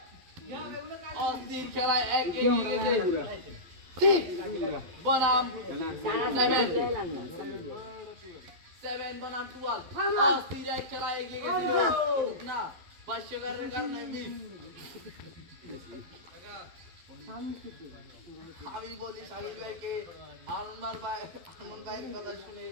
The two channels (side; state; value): left; late; 11 ms